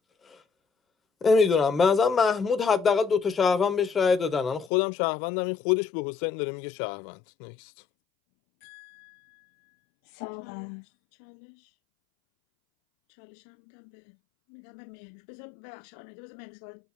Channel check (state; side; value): drops out; right; at 4.7 s